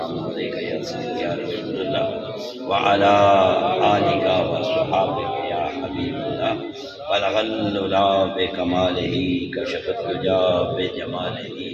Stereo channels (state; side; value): identical; both; correlation 1.00